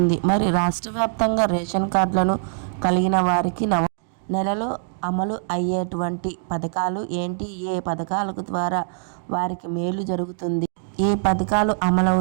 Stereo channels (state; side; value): silent; left; digital silence